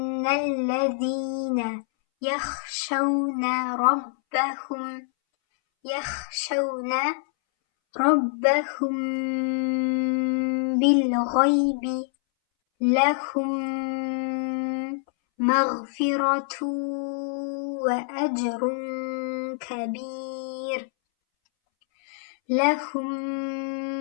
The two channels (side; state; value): right; silent; 61 dB below the other